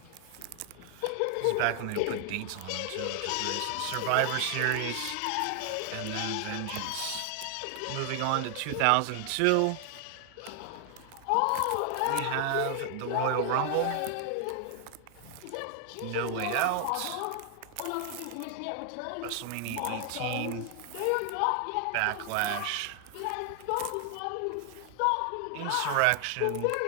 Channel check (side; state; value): both; different; correlation 0.00